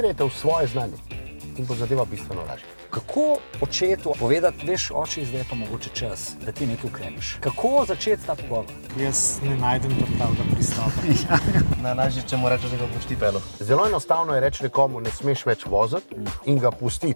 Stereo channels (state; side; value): inverted; both; correlation -1.00